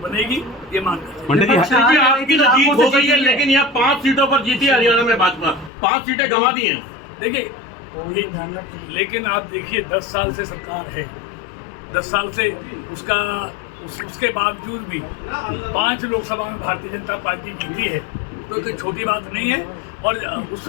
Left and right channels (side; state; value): right; drops out; at 5.7 s